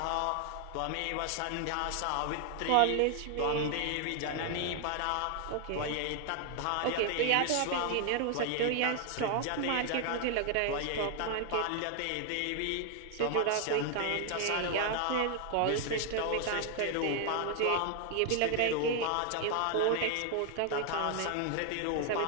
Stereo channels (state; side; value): different; both; correlation 0.00